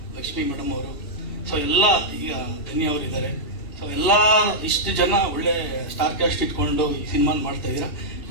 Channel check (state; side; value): late; right; 2.9 ms